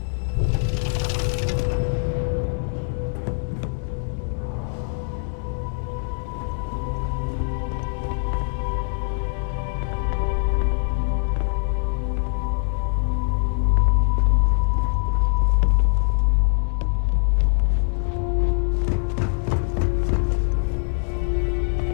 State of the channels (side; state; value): right; silent; 63 dB below the other